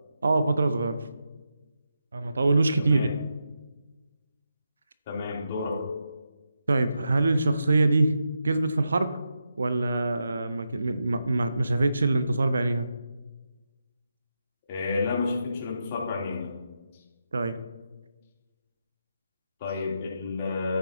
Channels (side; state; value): both; inverted; correlation -0.86